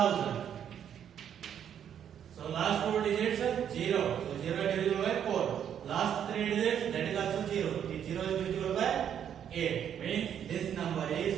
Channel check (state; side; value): quieter; left; 9.1 dB